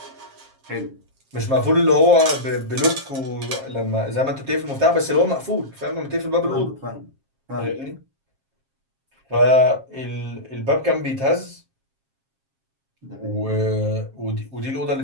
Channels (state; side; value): late; left; 7.4 ms